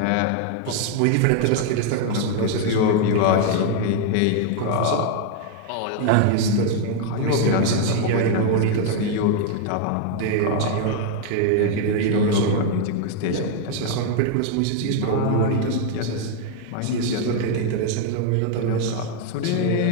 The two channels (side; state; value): both; different; correlation 0.00